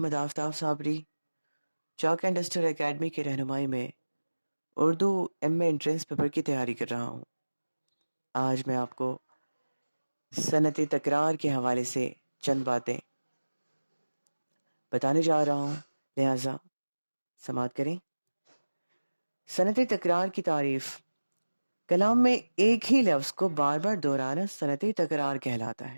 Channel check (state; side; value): inverted; both; correlation -1.00